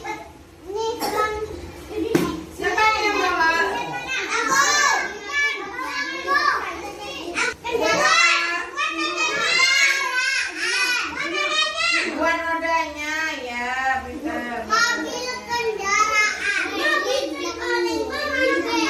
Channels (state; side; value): identical; both; correlation 1.00